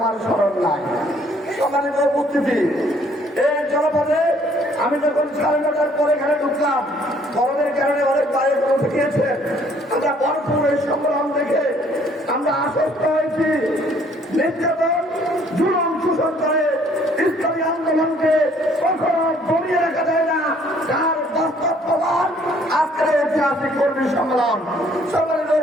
স্মরণ নাই। সম্মানিত উপস্থিতি, এই জনপদে আমি যখন 9:30টার পরে এখানে ঢুকলাম, গরমের কারণে অনেক বাইরে বসে গিয়েছে। আমরা ভরপুর এই সংগ্রাম দেখে আমরা আশ্বস্ত হয়েছি নির্যাতন, জুলুম, শোষণ করে ইসলামী আন্দোলনকে কখনো দমিয়ে রাখা যায় না, যার বাস্তব প্রমাণ আজকের ঐতিহাসিক কর্মী সম্মেলন। সম্মানিত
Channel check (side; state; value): both; normal; correlation 0.61